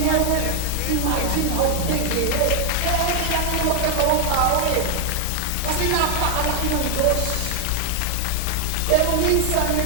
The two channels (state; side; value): different; both; correlation 0.00